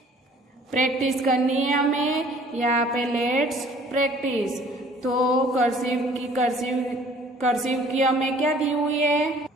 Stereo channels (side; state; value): both; normal; correlation 0.54